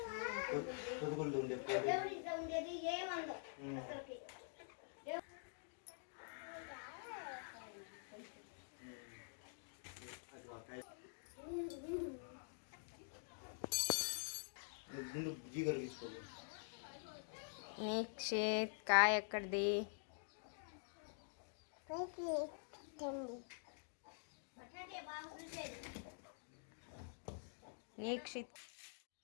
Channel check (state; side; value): silent; right; digital silence